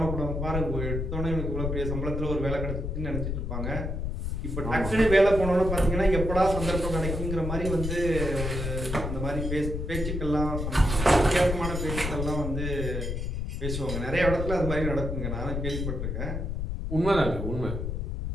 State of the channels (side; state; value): left; noise; rumble, 3 dB below the sound